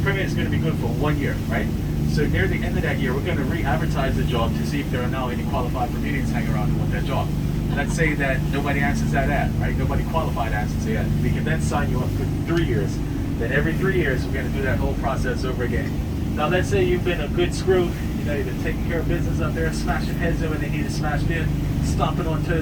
permit is going to be good for 1 year, right? So near the end of that year, we're going to re-advertise the job to see if there are now any qualified Bermudians hanging around who want that job. Let's say that nobody answers that ad, right? Nobody qualified answers the ad. We can then sign you up for 3 years. Then every 3 years, we're going to do that whole process over again. Now, let's say you've been a good screw. You know, you've been taking care of business up there, smashing heads in when they need it smashed in, stomping on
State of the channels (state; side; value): identical; both; correlation 1.00